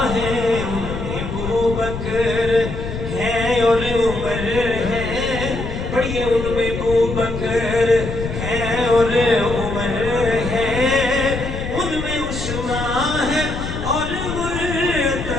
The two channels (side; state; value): left; noise; rumble, 6 dB below the sound